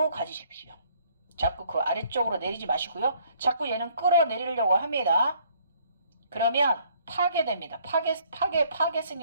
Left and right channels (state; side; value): inverted; both; correlation -0.63